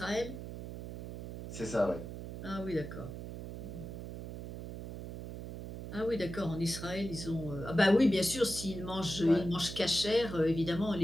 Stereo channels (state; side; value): noise; right; hum, 9 dB below the sound